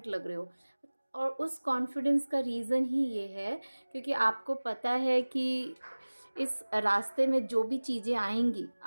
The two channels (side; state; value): both; inverted; correlation -1.00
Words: लग रहे हो। और उस कॉन्फिडेंस का रीज़न ही ये है क्योंकि आपको पता है कि इस रास्ते में जो भी चीज़ें आएंगी